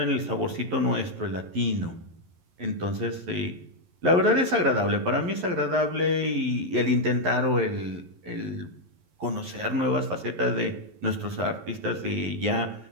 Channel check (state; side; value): late; left; 11 ms